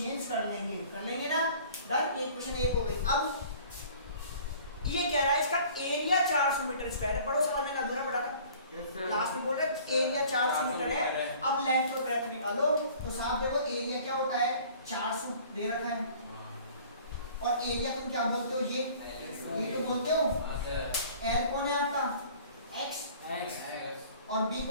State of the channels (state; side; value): inverted; both; correlation -0.49